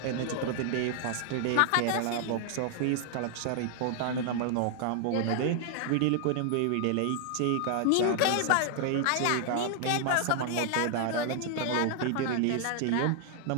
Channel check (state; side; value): different; both; correlation 0.00